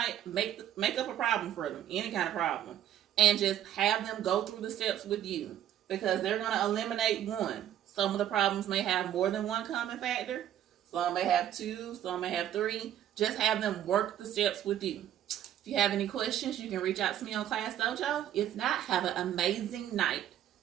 make up a problem for them, any kind of problem. And just have them go through the steps with you. Because they're going to eliminate 1. Some of the problems may have more than 1 common factor. Some may have 2, some may have 3. Just have them work the steps with you. If you have any questions, you can reach out to me on Class Dojo. If not, have an amazing night.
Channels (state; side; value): quieter; left; 11.3 dB